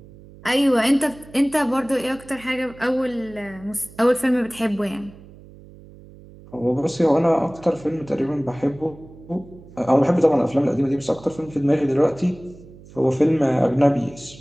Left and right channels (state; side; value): noise; right; hum, 21 dB below the sound